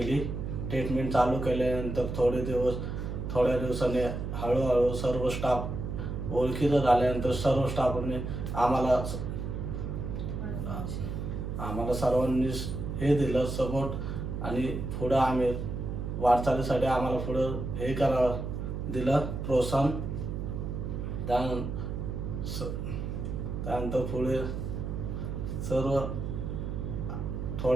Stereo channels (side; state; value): right; noise; hum, 4 dB below the sound